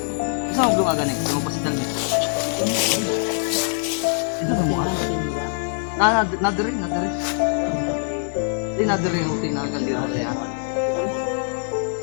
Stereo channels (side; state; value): right; silent; digital silence